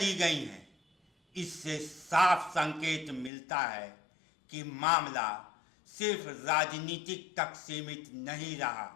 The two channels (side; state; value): right; drops out; at 3.3 s